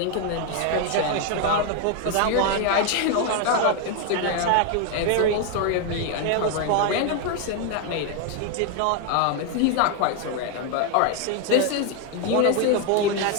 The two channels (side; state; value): both; different; correlation 0.01